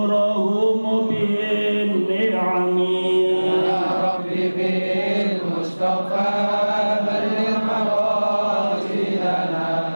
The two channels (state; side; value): inverted; both; correlation -1.00